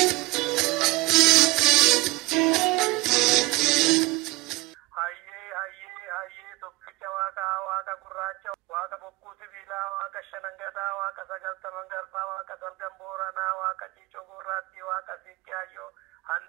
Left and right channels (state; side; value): quieter; left; 21.5 dB